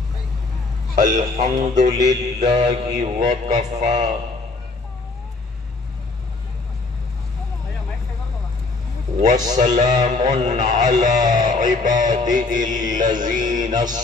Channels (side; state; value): right; quieter; 3.5 dB